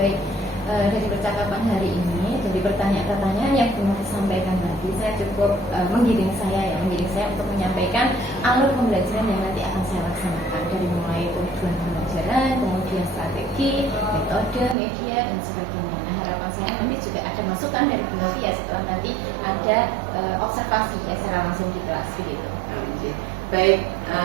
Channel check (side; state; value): left; drops out; at 14.8 s